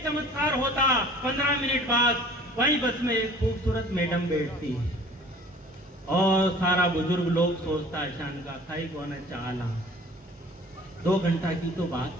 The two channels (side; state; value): both; normal; correlation 0.48